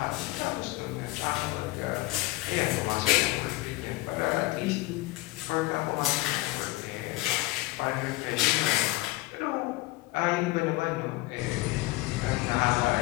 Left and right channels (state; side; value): quieter; right; 19.9 dB